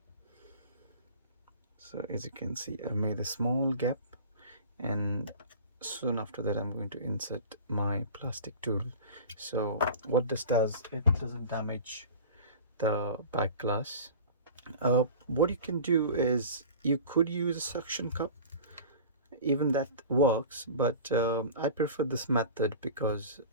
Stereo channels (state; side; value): inverted; both; correlation -0.38